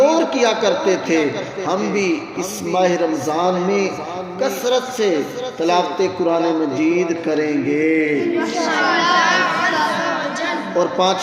کیا کرتے تھے۔ ہم بھی اس ماہ رمضان میں کثرت سے تلاوت قرآن مجید کریں گے اور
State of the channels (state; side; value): identical; both; correlation 1.00